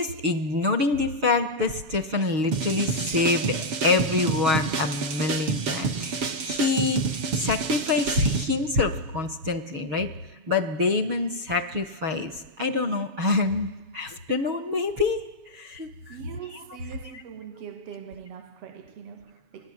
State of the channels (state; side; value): late; left; 7.2 ms